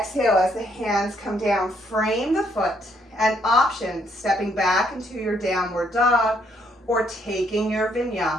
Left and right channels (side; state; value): both; normal; correlation 0.71